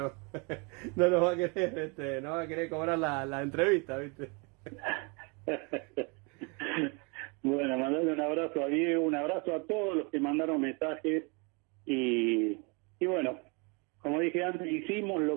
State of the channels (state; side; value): quieter; left; 31.7 dB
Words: nos va a querer, no va a querer cobrar la entrevista, ¿viste? Bueno, mandarle un abrazo a Diego, un abrazo a todos los que mandaron mensajes y bueno, como dije antes, hicimos